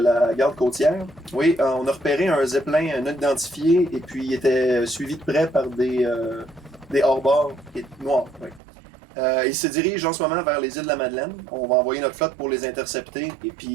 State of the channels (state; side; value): drops out; left; at 8.6 s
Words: garde côtière. Oui, on a repéré un zeppelin non identifié et puis il était suivi de près par des hors-bords noirs. Oui. Il se dirige en ce moment vers les îles de la Madeleine. On va envoyer notre flotte pour les intercepter et